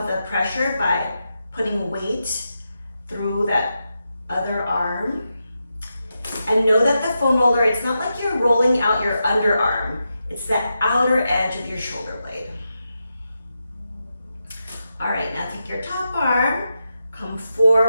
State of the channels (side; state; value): both; inverted; correlation -0.87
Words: the pressure by putting weight through that other arm. And know that the foam roller, it's not like you're rolling out your underarm. It's that outer edge of your shoulder blade. All right, now take your top arm, come